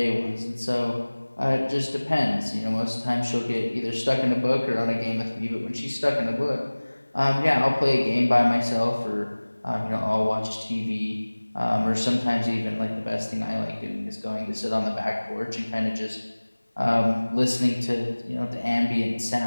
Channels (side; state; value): both; inverted; correlation -1.00